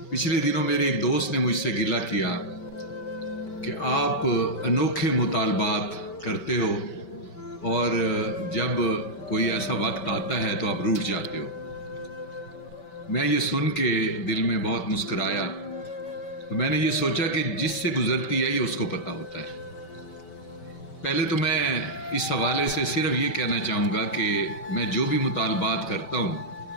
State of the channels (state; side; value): late; right; 5.2 ms